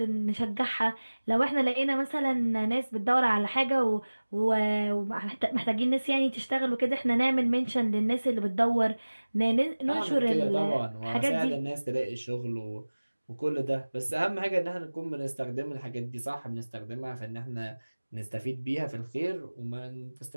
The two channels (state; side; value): inverted; both; correlation -1.00